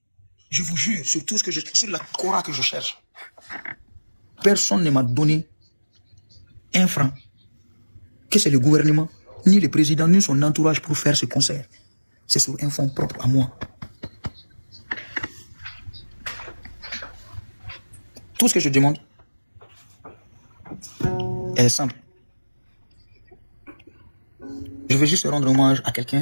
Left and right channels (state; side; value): inverted; both; correlation -1.00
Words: je vous jure, sur tout ce que sur la Cora que je cherche, personne ne m'a donné un franc, que c'est le gouvernement, ni le président, ni son entourage pour faire ce concert. C'est sur un fonds propre à moi. Tout ce que je demande est simple. Je veux juste rendre hommage à